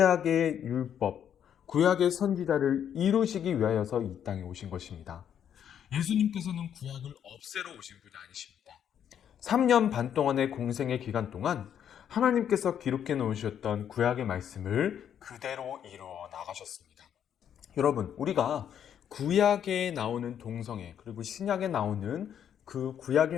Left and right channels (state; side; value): quieter; right; 9.2 dB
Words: 율법, 구약의 선지자를 이루시기 위하여서 이 땅에 오신 것입니다. 예수님께서는 구약을 없애러 오신 분이 아니십니다. 3년 반 동안의 공생의 기간 동안 하나님께서 기록해 놓으셨던 구약의 말씀을 그대로 이루어 나가셨습니다. 여러분, 우리가 구약에 나오는 동성애 그리고 신약에 나오는 그